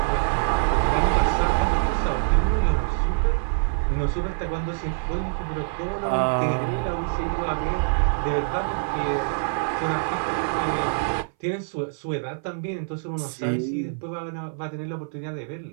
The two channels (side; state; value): left; silent; 59 dB below the other